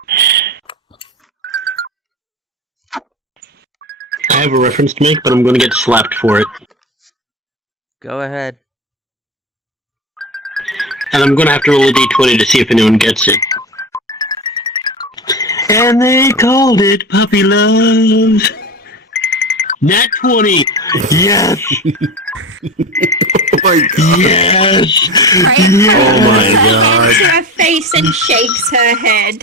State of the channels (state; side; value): normal; both; correlation 0.26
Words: I have a reference to make, but I'm going to get slapped for it. Go ahead. And I'm going to have to roll a d20 to see if anyone gets it. And they called it Puppy Love. Nat 20. Yes. Oh my god. Yes. Oh my god. To her face and shakes her